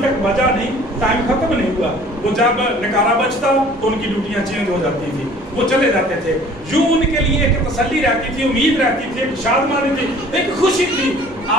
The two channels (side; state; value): both; normal; correlation 0.50